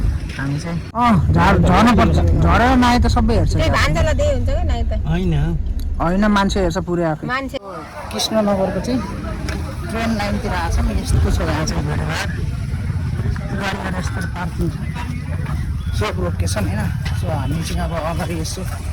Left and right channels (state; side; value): identical; both; correlation 1.00